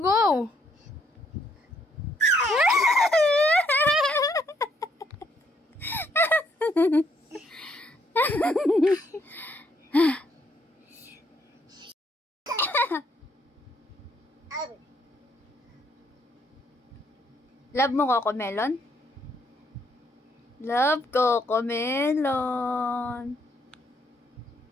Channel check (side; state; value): both; normal; correlation 0.71